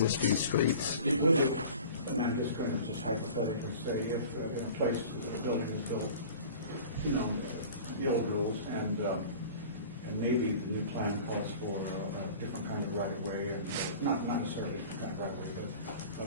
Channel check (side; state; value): both; inverted; correlation -0.41